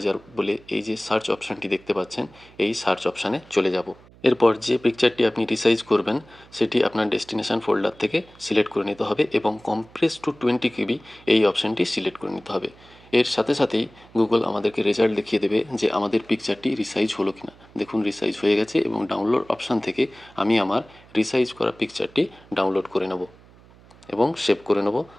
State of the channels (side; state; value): right; noise; hum, 25 dB below the sound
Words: বলে এই যে সার্চ অপশানটি দেখতে পাচ্ছেন এই সার্চ অপশানে চলে যাব। এরপর যে পিকচারটি আপনি রিসাইজ করবেন সেটি আপনার ডেস্টিনেশন ফোল্ডার থেকে সিলেক্ট করে নিতে হবে এবং কম্প্রেস টু 20 KB এই অপশানটি সিলেক্ট করে নিতে হবে। এর সাথে সাথেই গুগল আমাদেরকে রেজাল্ট দেখিয়ে দেবে যে আমাদের পিকচারটি রিসাইজ হলো কিনা। দেখুন রিসাইজ হয়ে গেছে এবং ডাউনলোড অপশান থেকে আমি আমার রিসাইজ করা পিকচারটি ডাউনলোড করে নেব এবং সেভ করে নেব